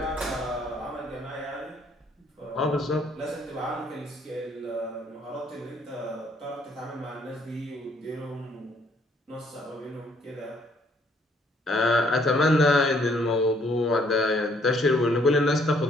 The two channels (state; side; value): normal; both; correlation 0.65